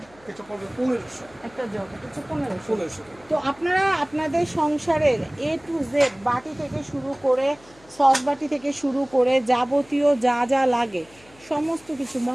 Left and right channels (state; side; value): noise; left; hum, 27 dB below the sound